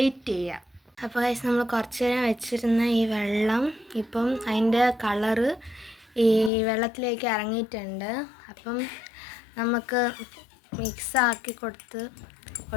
ചെയ്യാം. അപ്പോൾ നമ്മൾ കുറച്ച് നേരം വെച്ചിരുന്ന ഈ വെള്ളം ഇപ്പം അതിൻ്റെ കളറ് ഈ വെള്ളത്തിലേക്ക് ഇറങ്ങിയിട്ടുണ്ട്. അപ്പം നമുക്ക് മിക്സാക്കി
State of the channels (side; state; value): right; drops out; at 6.5 s